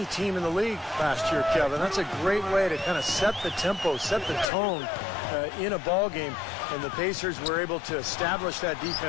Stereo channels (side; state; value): right; drops out; at 4.5 s